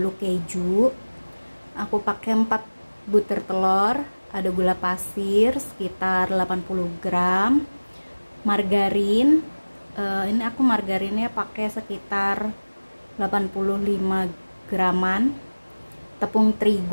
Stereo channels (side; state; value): both; inverted; correlation -1.00